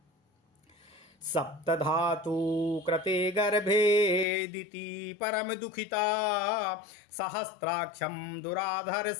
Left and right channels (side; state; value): right; drops out; at 4.2 s